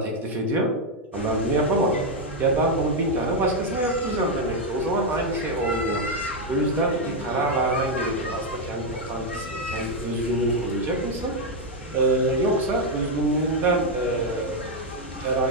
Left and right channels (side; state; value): both; normal; correlation 0.02